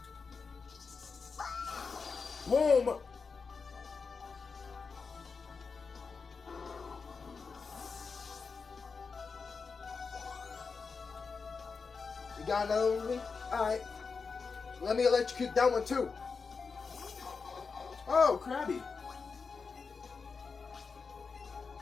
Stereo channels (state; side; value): quieter; right; 5.0 dB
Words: Boom. You got another one with me? Alright. Let me electrocute that one too. Oh, Krabby.